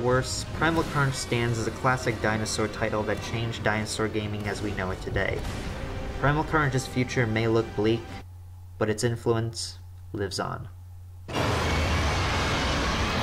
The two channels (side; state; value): both; identical; correlation 1.00